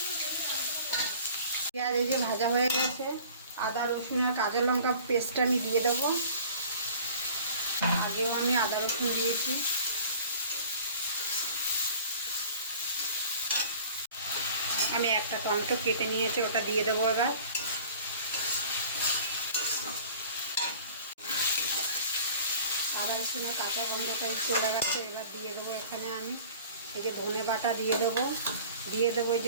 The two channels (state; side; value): inverted; both; correlation -0.46